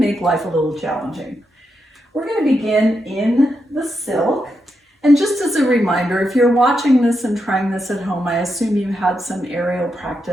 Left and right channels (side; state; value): both; normal; correlation 0.84